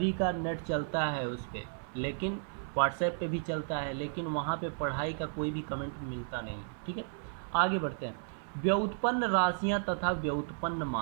का नेट चलता है उस पर, लेकिन व्हाट्सएप पे भी चलता है, लेकिन वहाँ पे पढ़ाई का कोई भी कमेंट मिलता नहीं, ठीक है। आगे बढ़ते हैं, व्युत्पन्न राशियाँ तथा व्युत्पन्न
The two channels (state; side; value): silent; left; 55 dB below the other